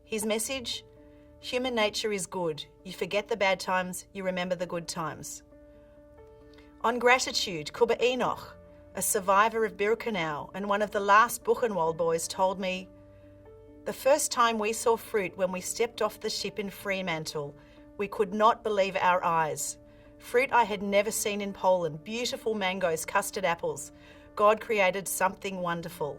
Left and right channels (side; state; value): both; identical; correlation 1.00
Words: His message? Human nature is good. You forget the bad times, you remember the good times. On gratitude, Kuba Enoch, a survivor of Birkenau and one of the last Buchenwald boys, told me, "The first time we saw fruit when we stepped off the ship in Fremantle, we could not believe our eyes. Fruit I had never seen in Poland, beautiful mangoes, custard apples. God created something